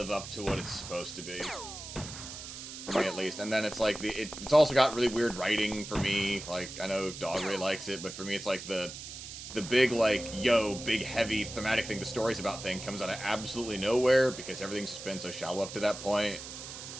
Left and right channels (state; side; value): noise; right; hiss, 11 dB below the sound